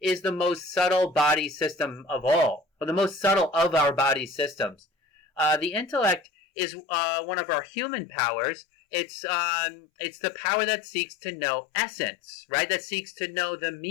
is the most subtle body system of all, or the most subtle of our body systems. The intellect is one of our human powers. It's the power that seeks to know essence, right? That seeks to know the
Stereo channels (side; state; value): right; drops out; at 6.2 s